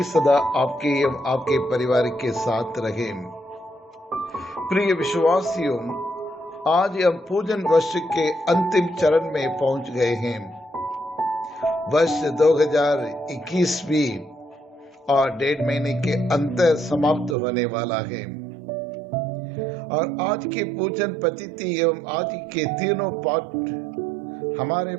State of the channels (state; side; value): drops out; left; at 17.4 s